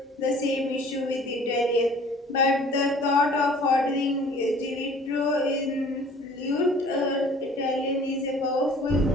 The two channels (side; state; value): both; normal; correlation 0.51